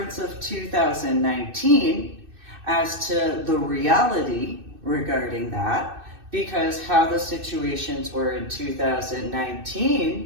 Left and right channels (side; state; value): left; late; 2.6 ms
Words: of 2019 as to the reality regarding that, because how the situations were in